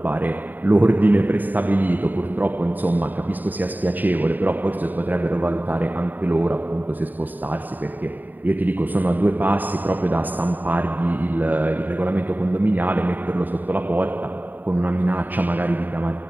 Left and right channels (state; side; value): late; left; 0.088 ms